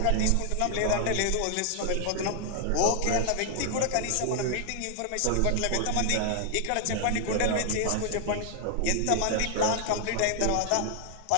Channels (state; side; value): different; both; correlation 0.00